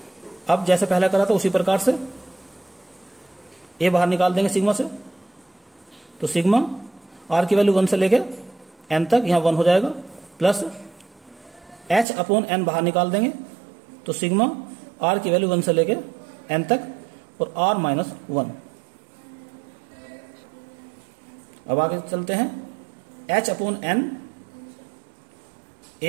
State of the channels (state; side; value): drops out; left; at 12.1 s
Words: अब जैसे पहले करा था उसी प्रकार से ए बाहर निकाल देंगे सिग्मा से, तो सिग्मा आर की वैल्यू 1 से लेके एन तक, यहां 1 हो जाएगा, प्लस एच अपॉन एन बाहर निकाल देंगे, तो सिग्मा आर की वैल्यू 1 से लेके एन तक, और आर माइनस 1। अब आगे चलते हैं, h upon n